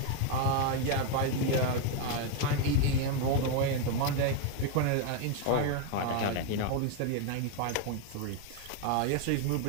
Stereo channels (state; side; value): different; both; correlation 0.01